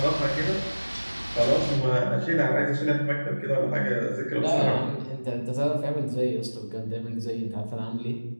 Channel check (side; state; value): both; inverted; correlation -1.00